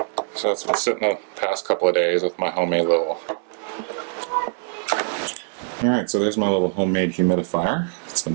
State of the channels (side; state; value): left; silent; digital silence